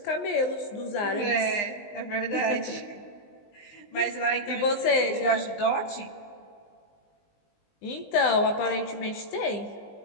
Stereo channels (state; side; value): late; right; 19 ms